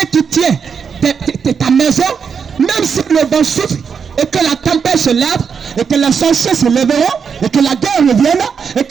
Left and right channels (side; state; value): left; quieter; 6.4 dB